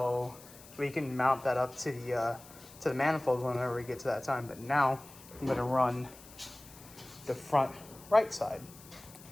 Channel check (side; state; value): left; noise; hiss, 20 dB below the sound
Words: we can mount that up to the manifold whenever we get to that time. But now I'm gonna run the front right side.